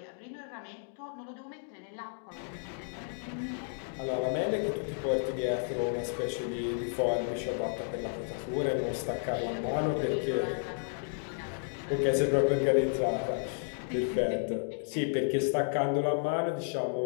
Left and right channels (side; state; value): right; silent; digital silence